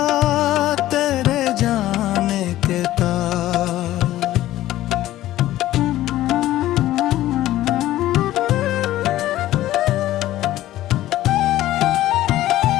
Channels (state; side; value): quieter; right; 14.6 dB